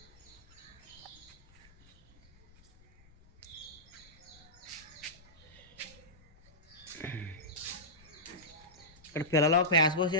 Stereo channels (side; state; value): left; noise; rumble, 25 dB below the sound